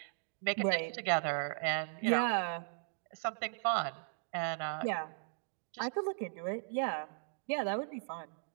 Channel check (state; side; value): silent; left; digital silence